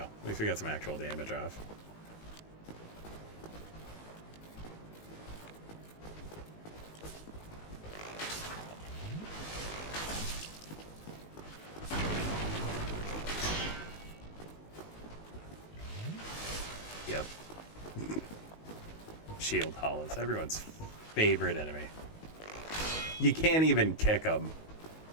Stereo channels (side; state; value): right; late; 19 ms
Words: At least we got some actual damage off. Yep. Shield hollows, everyone's favorite enemy. You can't even kick them